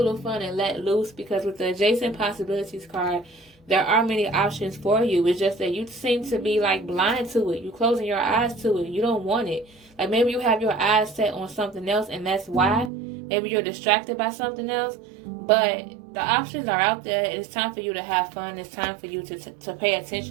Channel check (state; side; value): drops out; left; at 12.9 s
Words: fun and let loose, because with the adjacent possibilities card, there are many options for you. It's just that you seem to be like blind to it. You're closing your eyes to it. You don't want it. Like maybe you have your eyes set on something else, and that's why. Maybe you're distracted by something else. But the options are out there. It's time for you to have fun. It's time for you to pay